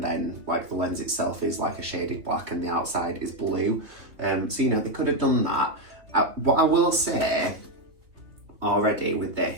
like the lens itself is like a shaded black and the outside is blue. So they could have done that. What I will say already with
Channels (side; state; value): left; late; 3.2 ms